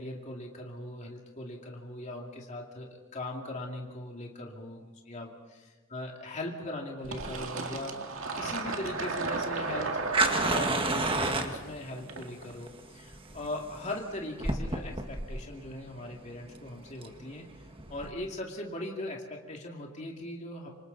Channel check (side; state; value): both; normal; correlation 0.11